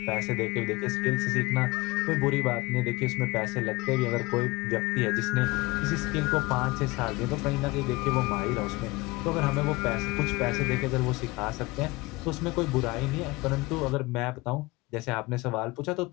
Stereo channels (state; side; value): quieter; right; 22.5 dB